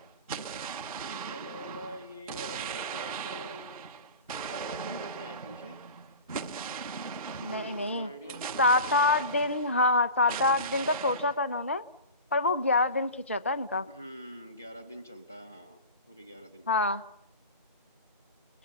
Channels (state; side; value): inverted; both; correlation -0.33